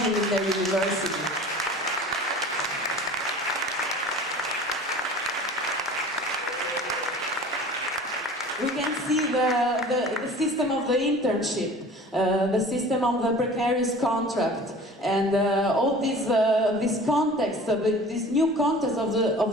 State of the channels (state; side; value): normal; both; correlation 0.43